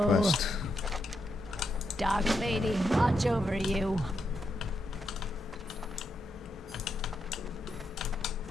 quest. Dark Lady, watch over you.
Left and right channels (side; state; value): both; normal; correlation 0.82